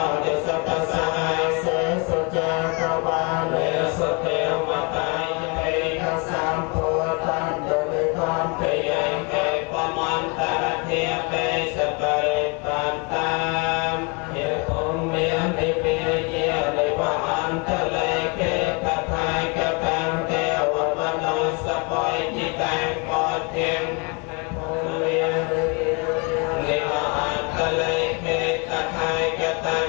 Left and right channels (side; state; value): right; quieter; 31.4 dB